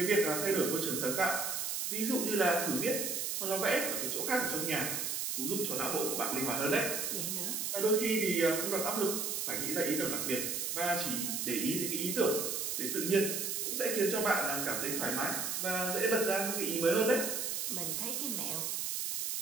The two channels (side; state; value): right; noise; hiss, 1 dB below the sound